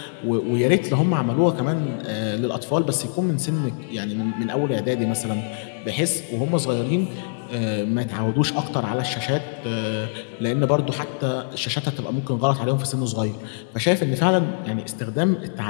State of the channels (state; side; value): silent; right; digital silence